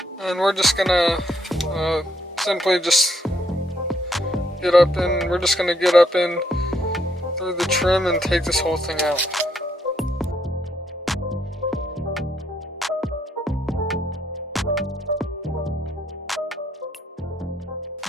and we're just gonna simply just get up in. We're just gonna get up in through the trim and take this whole thing out.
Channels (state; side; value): normal; both; correlation 0.72